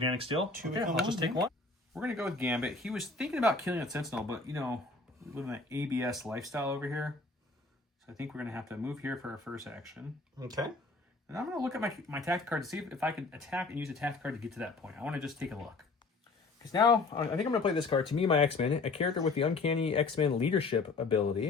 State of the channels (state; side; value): quieter; right; 3.7 dB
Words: steel. 2 Okay, become I'll just 1, take 1. We're going to go with Gambit. He was thinking about killing a Sentinel, but, you know, we live in that ABS lifestyle over here. So I think we're going to have to move here for our first action. Okay. And I'm going to look at my tactic card to see if I can attack and use a tactic card to get to that point. I want to just take a look. Because now, I think I'm going to play this card. To me, my X-Men, a character with the uncanny X-Men leadership